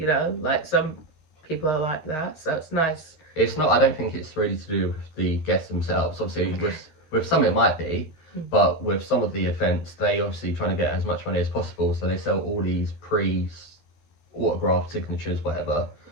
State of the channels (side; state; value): right; late; 13 ms